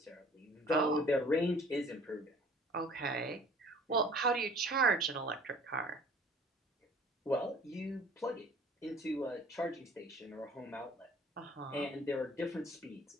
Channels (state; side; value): normal; both; correlation 0.51